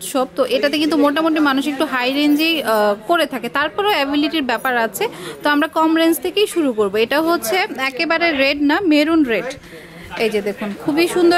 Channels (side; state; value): both; identical; correlation 1.00